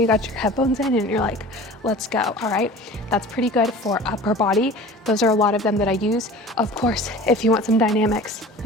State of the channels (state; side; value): normal; both; correlation 0.40